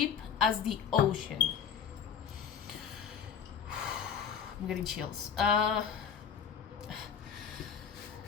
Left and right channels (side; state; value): right; quieter; 7.5 dB